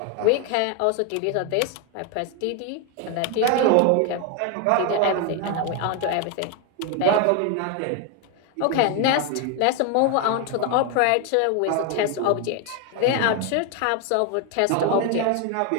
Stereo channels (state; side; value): different; both; correlation 0.01